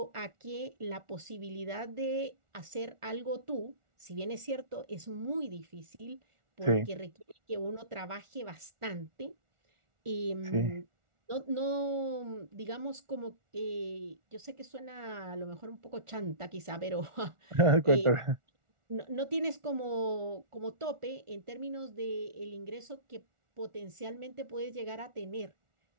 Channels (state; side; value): late; left; 1.4 ms